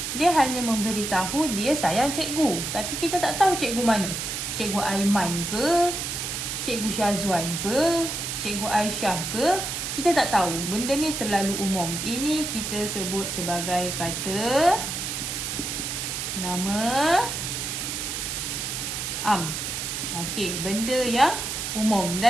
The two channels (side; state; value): right; noise; hiss, 4 dB below the sound